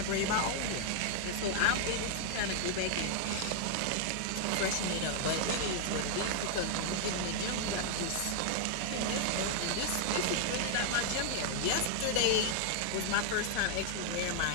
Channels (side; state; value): both; different; correlation 0.00